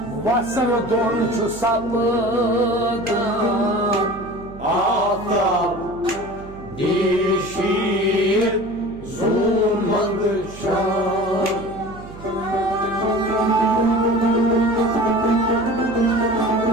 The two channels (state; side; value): noise; right; hum, 17 dB below the sound